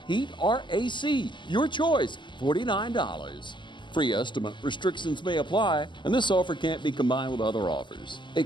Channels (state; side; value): late; right; 0.23 ms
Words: Heat or AC, your choice, $49. Free estimate restrictions may apply, and this offer can't be combined with other offers.